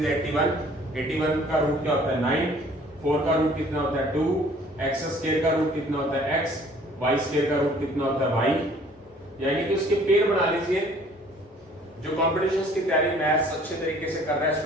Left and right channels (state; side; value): normal; both; correlation 0.55